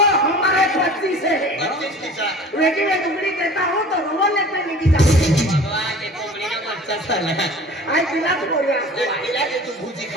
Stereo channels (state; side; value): normal; both; correlation 0.42